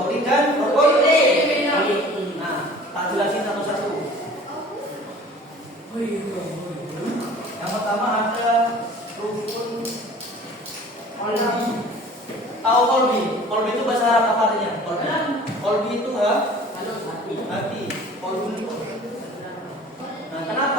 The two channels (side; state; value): both; normal; correlation 0.46